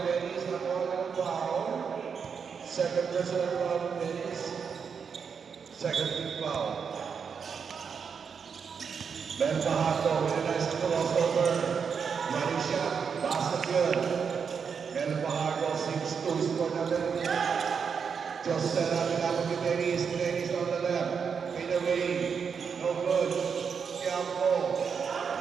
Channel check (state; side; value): quieter; left; 6.3 dB